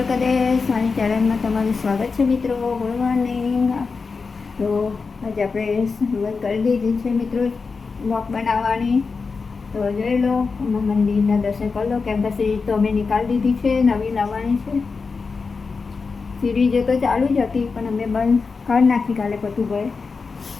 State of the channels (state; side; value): quieter; right; 4.7 dB